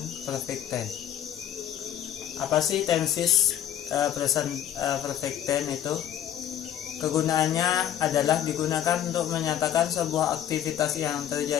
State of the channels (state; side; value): quieter; right; 10.8 dB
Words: perfect tense. Apa sih tenses present perfect tense itu? Kegunaannya adalah digunakan untuk menyatakan sebuah aktivitas yang